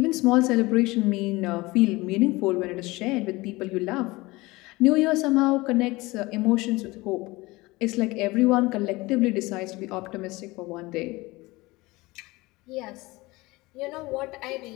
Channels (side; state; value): right; quieter; 21.6 dB